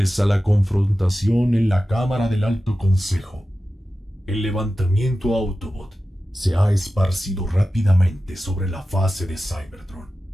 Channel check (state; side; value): normal; both; correlation 0.94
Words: a la confrontación en la Cámara del Alto Consejo, el levantamiento Autobot se ha esparcido rápidamente sobre la fase de Cybertron.